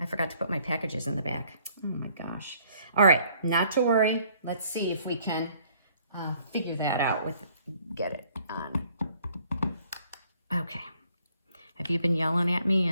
packages in the back. Oh my gosh. All right, not to worry. Let's see if we can figure that out get it on. Okay. Have you been yelling at me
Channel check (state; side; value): inverted; both; correlation -0.62